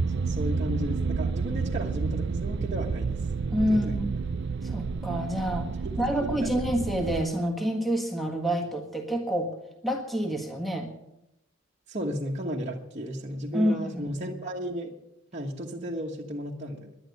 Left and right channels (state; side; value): normal; both; correlation 0.77